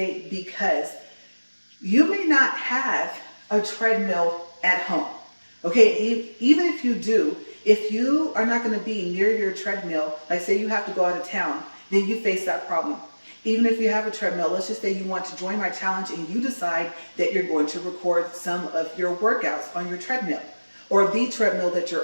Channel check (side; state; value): both; inverted; correlation -1.00